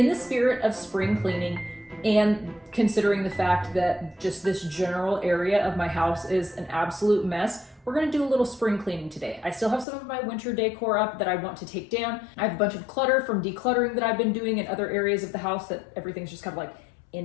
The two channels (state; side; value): drops out; right; at 9.9 s